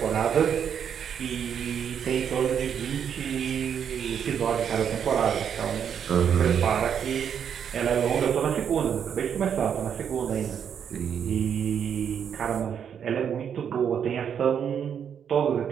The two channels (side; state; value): left; quieter; 8.1 dB